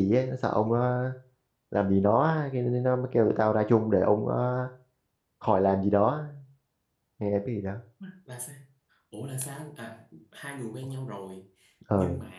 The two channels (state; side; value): identical; both; correlation 1.00